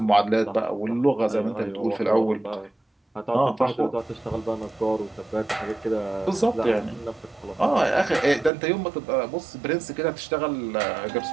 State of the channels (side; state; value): left; drops out; at 8.5 s